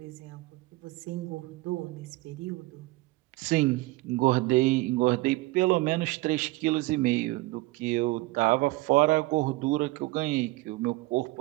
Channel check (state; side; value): quieter; left; 20.9 dB